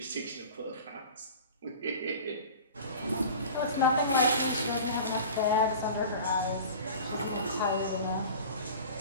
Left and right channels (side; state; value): both; inverted; correlation -0.38